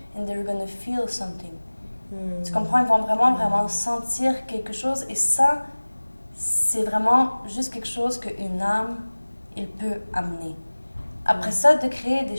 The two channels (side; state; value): both; inverted; correlation -1.00